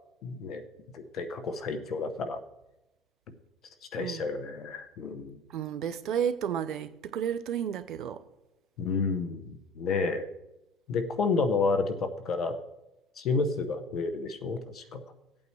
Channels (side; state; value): both; normal; correlation 0.45